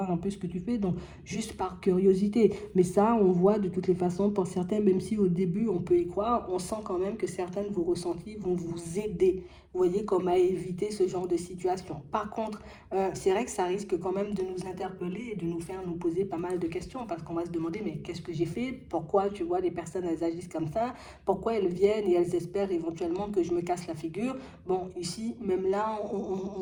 un peu ce que tu fais. Donc, juste par curiosité. Mais ça, on voit de toutes les façons, pour certains, même si au début, on peut y croire, on sent quand même que certains de vos ressentis vont vous aider. Vous voyez, comme à éviter ce genre de situation. Par contre, c'est vrai que ça risque quand même de nous interpeller et de nous faire nous poser pas mal de questions parce qu'on va se demander mais qu'est-ce que j'ai fait? Pourquoi tu vois les personnes elles agissent comme ça? Pourquoi elles viennent et elles espèrent éventuellement que je me casse la figure? Bon, ici, même là,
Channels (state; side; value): identical; both; correlation 1.00